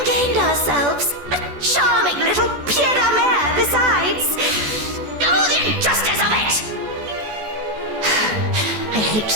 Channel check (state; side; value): late; left; 14 ms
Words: gained ourselves a charming little pied de mer besides. Oh, the injustice of it!